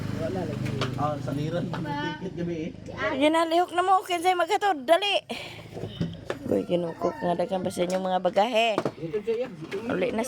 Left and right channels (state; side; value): identical; both; correlation 1.00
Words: Wala lagi. Ah, saniran tiket gabi eh. Ginalihok na mo, kinsay maghatod, dali. Uy, kinukok nga dagan pa sa inyong mga bagahe. Dito siya. Uli na